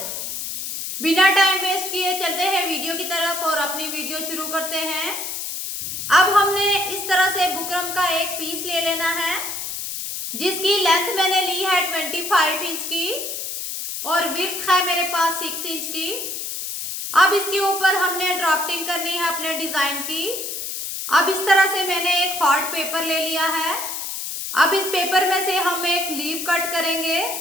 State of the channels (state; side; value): noise; left; hiss, 5 dB below the sound